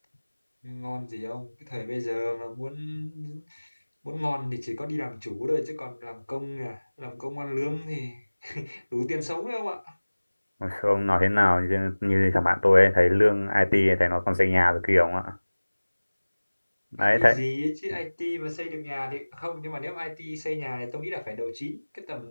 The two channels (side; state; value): both; inverted; correlation -1.00